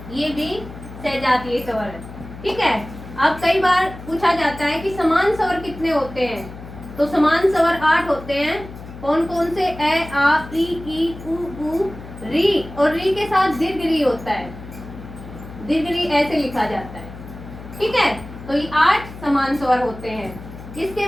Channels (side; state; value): left; noise; hum, 14 dB below the sound